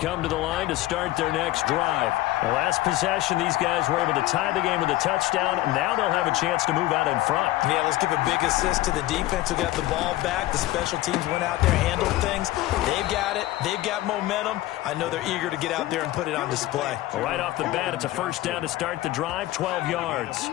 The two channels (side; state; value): right; quieter; 16.5 dB